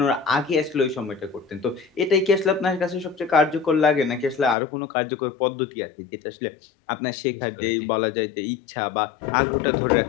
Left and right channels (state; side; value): drops out; right; at 4.5 s